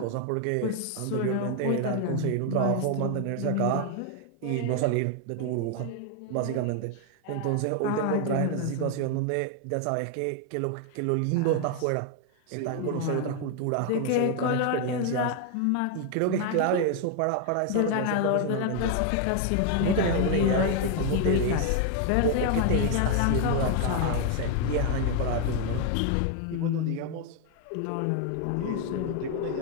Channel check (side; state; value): both; different; correlation 0.00